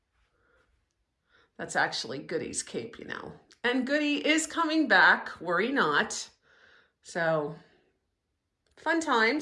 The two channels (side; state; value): both; identical; correlation 1.00